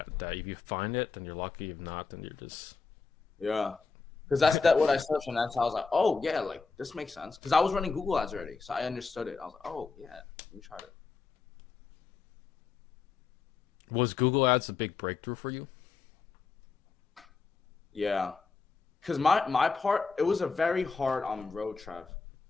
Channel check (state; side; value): quieter; right; 4.9 dB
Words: that if you find it, then you're lucky. If not, then you're just... Yeah. Because that's what I searched, and that's how I was like, oh yeah, like this makes sense. Because I was running Google ads already, so I understood it. I was like, oh yeah, let me try it. Was Google Ads a big breakthrough for you? Yeah. Because my part, it was a very hard road, Trev.